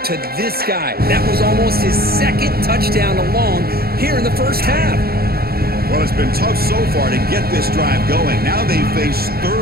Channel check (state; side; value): late; left; 0.45 ms